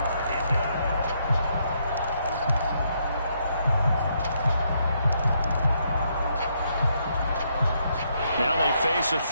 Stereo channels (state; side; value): inverted; both; correlation -0.75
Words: Now they face a